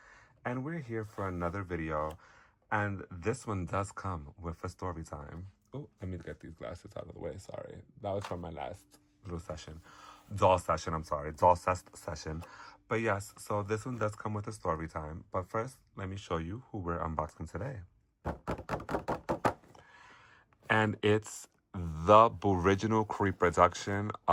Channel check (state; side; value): identical; both; correlation 1.00